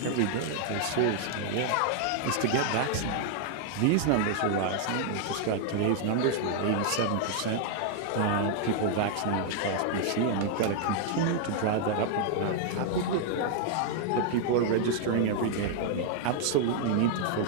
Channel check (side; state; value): both; different; correlation 0.00